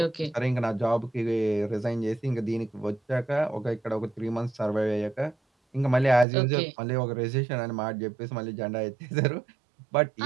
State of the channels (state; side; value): drops out; left; at 6.2 s